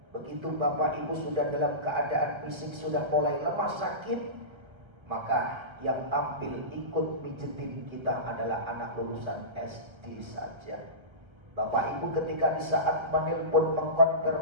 Begitu Bapak Ibu sudah dalam keadaan fisik sudah mulai lemah sakit, maka yang tampil ikut mijetin kita adalah anak lulusan SD saja. Bapak Ibu ketika di saat menelpon,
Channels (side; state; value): left; late; 1.3 ms